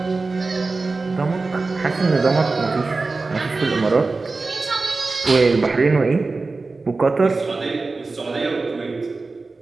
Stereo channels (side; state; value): left; quieter; 3.8 dB